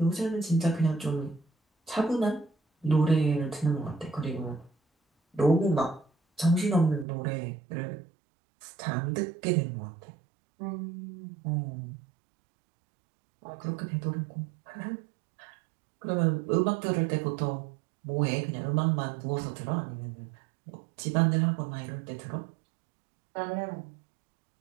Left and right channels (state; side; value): drops out; left; at 7.1 s